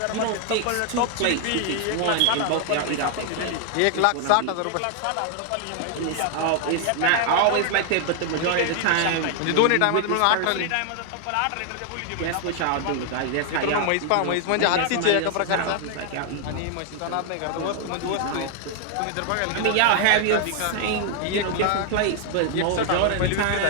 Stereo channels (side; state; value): both; different; correlation 0.00